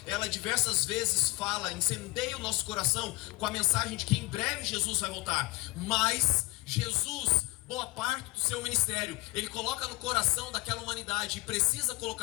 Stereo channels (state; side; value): quieter; right; 22.4 dB